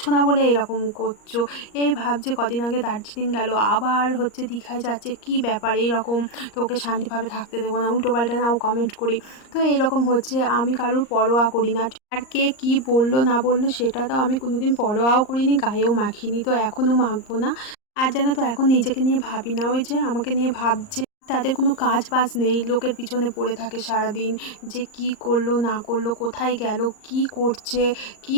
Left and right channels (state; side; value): late; right; 38 ms